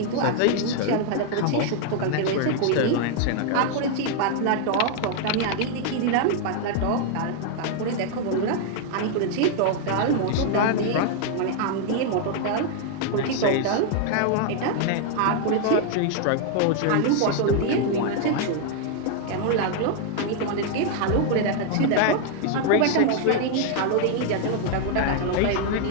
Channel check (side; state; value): both; different; correlation 0.00